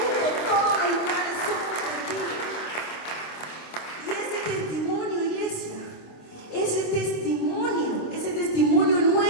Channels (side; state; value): right; late; 26 ms